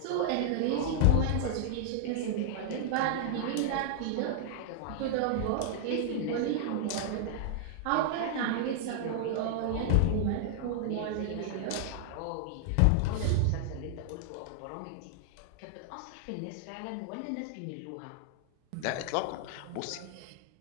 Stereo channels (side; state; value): both; different; correlation -0.01